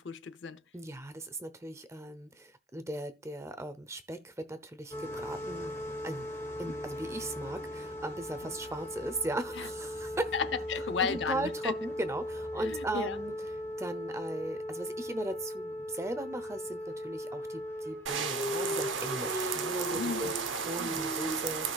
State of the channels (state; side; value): normal; both; correlation 0.48